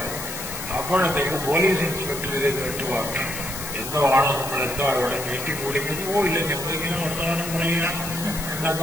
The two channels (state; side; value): noise; left; hiss, 8 dB below the sound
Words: അപ്പോഴത്തേക്ക് പോലീസ് ഇൻസ്പെക്ടർ ഇത് കേട്ടുവാങ്ങി എന്തോ ആണ് നമ്മളെന്തോ അവിടെ നീട്ടിക്കൂടിക്കുന്നു. ഇല്ല, ഞങ്ങളിങ്ങനെ വർത്തമാനം പറയുക